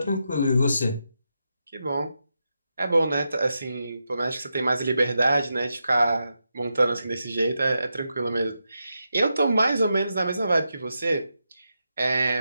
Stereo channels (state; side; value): inverted; both; correlation -0.86